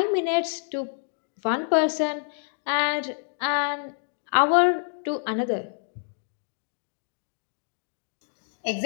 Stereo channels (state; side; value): silent; right; digital silence